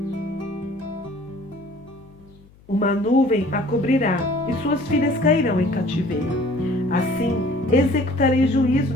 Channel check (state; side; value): noise; left; hum, 27 dB below the sound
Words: Uma nuvem a cobrirá, e suas filhas cairão em cativeiro. Assim executarei juízo